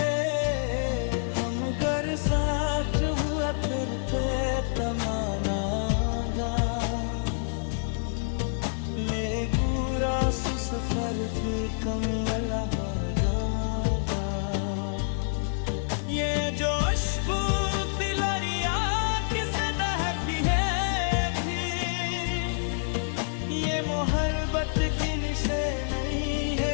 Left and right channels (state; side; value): silent; right; digital silence